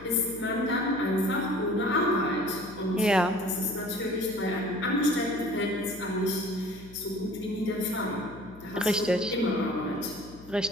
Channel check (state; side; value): noise; left; hum, 19 dB below the sound